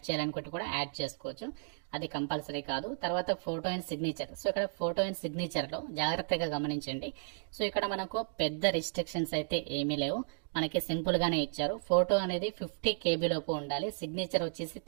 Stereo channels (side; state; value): left; silent; digital silence